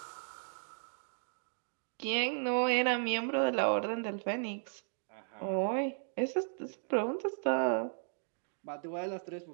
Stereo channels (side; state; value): left; silent; digital silence